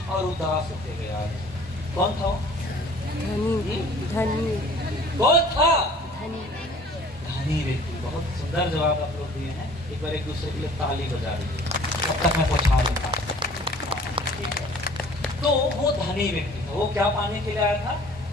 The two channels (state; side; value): normal; both; correlation 0.50